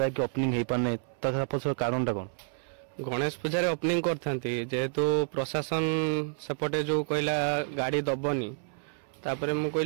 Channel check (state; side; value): silent; left; 58 dB below the other